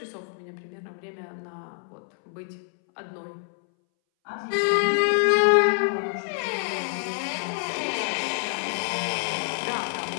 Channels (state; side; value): silent; right; 60 dB below the other